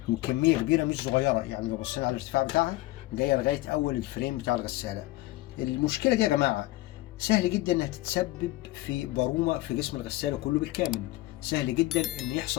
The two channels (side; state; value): right; quieter; 18.3 dB